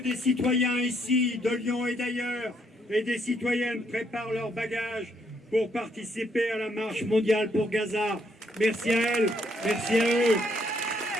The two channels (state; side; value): normal; both; correlation 0.72